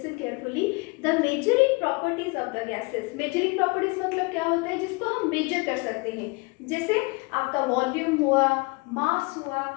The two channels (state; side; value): quieter; right; 28.8 dB